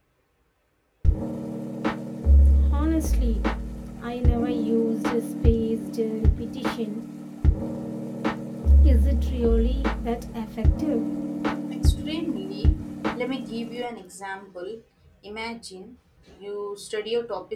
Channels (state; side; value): identical; both; correlation 1.00